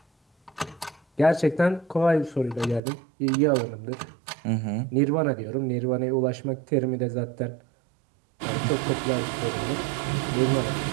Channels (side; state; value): left; drops out; at 2.8 s